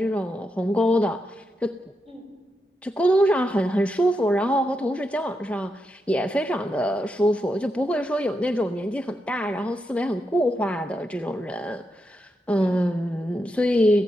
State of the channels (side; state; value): both; normal; correlation 0.85